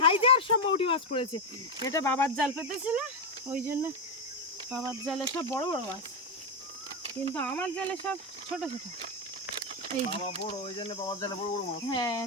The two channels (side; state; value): both; normal; correlation 0.06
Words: সব মৌটি মাছ পড়েছে। এটা বাবার জাল পেতেছিল, ওই জন্য বাবার জালে সব বড় বড় মাছ, কিন্তু আমার জালে সব ছোট ছোট। এই বাবা বড়, ওই জন্য বাবার জালে বড় বড় মাছ। হ্যাঁ